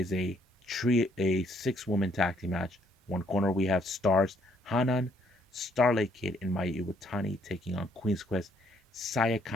a 6-woman tag team match. One corner we have Stars Hanan, Starlight Kid, and Mayu Iwatani taking on Queen's Quest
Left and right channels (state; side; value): normal; both; correlation 0.67